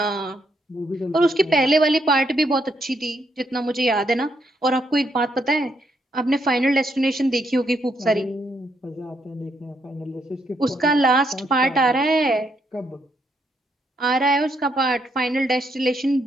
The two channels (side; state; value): both; normal; correlation 0.76